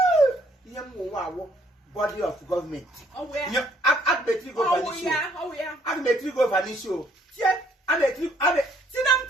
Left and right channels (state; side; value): normal; both; correlation 0.65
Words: ihe mo wa wo body of government yeah agmetri go vanish agmetri go vanish o tie agmetri sinam